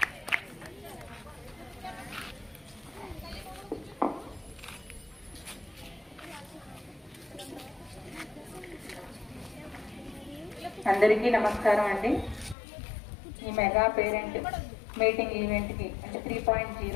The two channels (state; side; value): drops out; right; at 12.6 s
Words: అందరికీ నమస్కారం అండి. ఈ మెగా పేరెంట్ మీటింగ్ ఈవెంట్కి అంటే